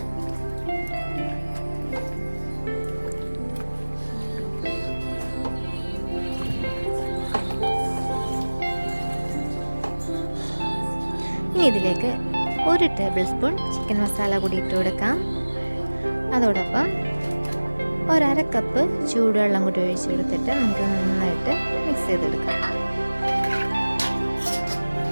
ഇനി ഇതിലേക്ക് 1 ടേബിൾ സ്പൂൺ ചിക്കൻ മസാല കൂടി ഇട്ട് കൊടുക്കാം. അതോടൊപ്പം 1/2 കപ്പ് ചൂടുവെള്ളം കൂടി ഒഴിച്ചെടുത്തിട്ട് നമുക്ക് നന്നായിട്ട് മിക്സ് ചെയ്തെടുക്കാം.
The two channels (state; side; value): inverted; both; correlation -1.00